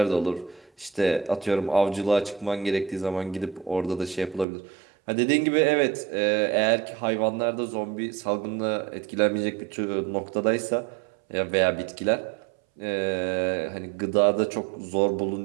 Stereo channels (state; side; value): drops out; left; at 4.5 s